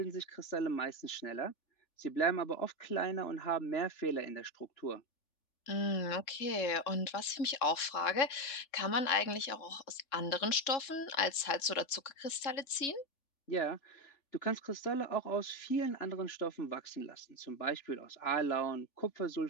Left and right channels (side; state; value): right; late; 3.7 ms